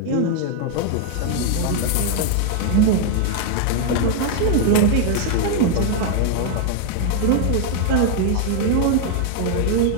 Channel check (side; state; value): both; different; correlation 0.00